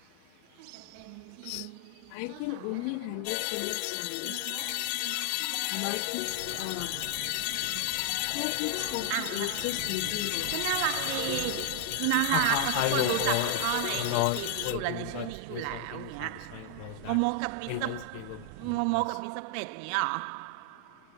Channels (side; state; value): both; different; correlation 0.00